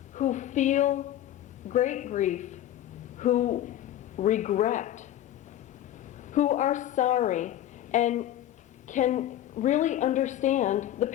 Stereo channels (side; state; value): right; quieter; 12.4 dB